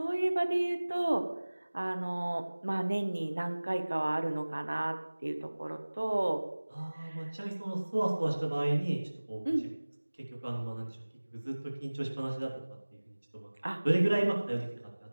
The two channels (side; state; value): both; inverted; correlation -1.00